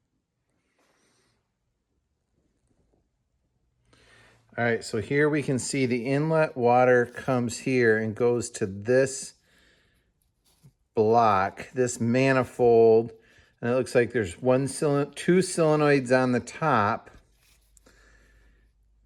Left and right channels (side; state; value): both; identical; correlation 1.00